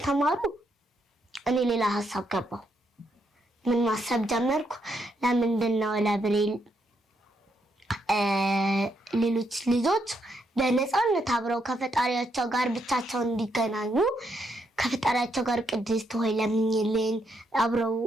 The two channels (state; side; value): normal; both; correlation 0.77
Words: እኔ ሌላ ሀሳብ ገባው። ምን ማሰብ ጀመርኩ? ለምንድን ነው ለብሬል ሌሎች ልጆች በነፃነት አብረው ከፈጣሪያቸው ጋር ብቻቸውን እንዲገናኙ ከፈጣሪያቸው ጋር ቅድስት ሆይ ለምኝልን አብረው